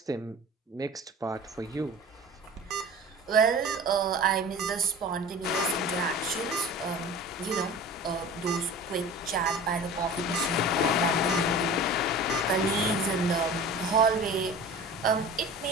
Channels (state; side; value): normal; both; correlation 0.38